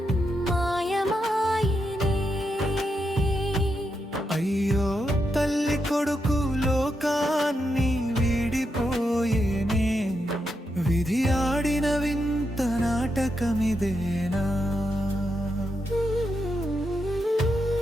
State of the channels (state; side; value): normal; both; correlation 0.84